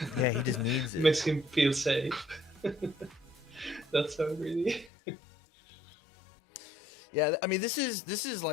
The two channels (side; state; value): right; drops out; at 4.9 s